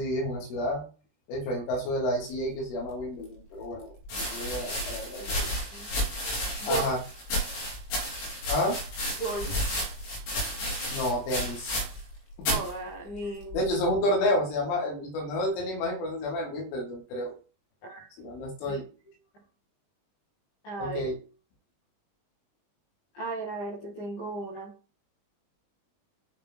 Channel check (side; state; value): right; late; 20 ms